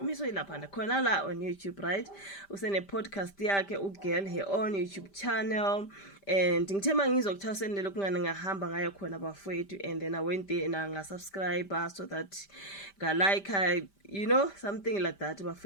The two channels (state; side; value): late; right; 5.1 ms